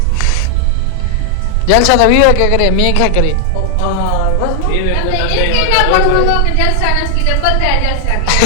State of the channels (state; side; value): different; both; correlation 0.00